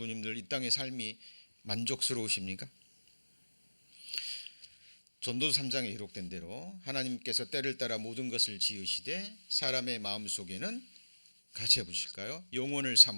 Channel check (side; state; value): both; inverted; correlation -1.00